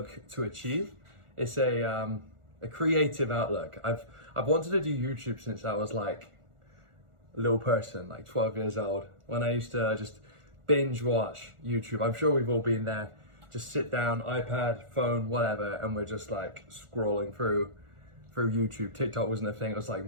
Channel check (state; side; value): late; left; 1.4 ms